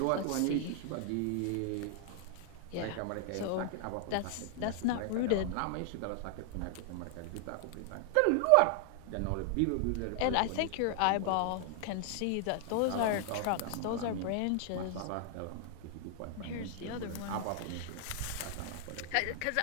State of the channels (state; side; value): different; both; correlation 0.00